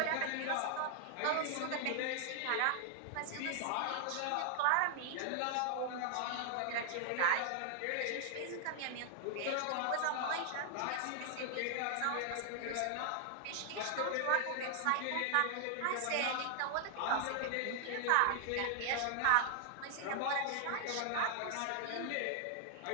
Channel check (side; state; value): both; different; correlation 0.00